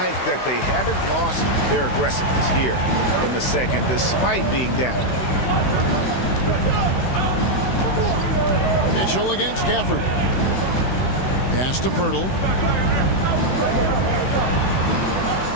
that they haven't lost their aggressiveness here in the second, despite being down. Mitchell against Gafford. Pass to Pirtle.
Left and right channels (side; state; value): right; late; 16 ms